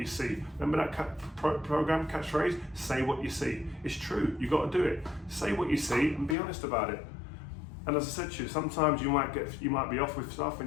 see. Remember that program catchphrase? Say what you see. It's true. You got to do it. Say what you see and be honest about it. And as I said to you, sometimes you might be off with stuff, and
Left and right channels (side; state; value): right; drops out; at 6.4 s